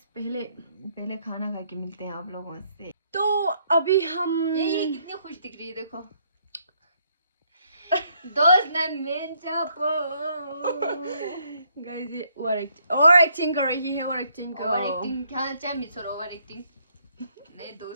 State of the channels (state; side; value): inverted; both; correlation -0.70